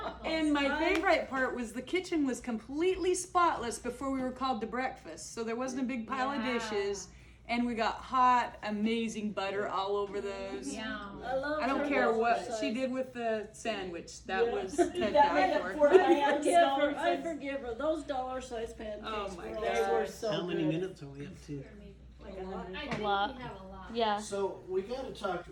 And my favorite part was the kitchen was completely spotless before we were called to breakfast. So there wasn't a big pile of dishes. And we got hot, amazing butter all over those. Yum. I don't care what she did with the sandwich. That was to die for. I forgive her. Those dollar-sized pancakes. Oh my were God. They were so How many good. minutes are we up to? I think A lot. we have a lot. Yeah. So we got to talk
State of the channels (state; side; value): identical; both; correlation 1.00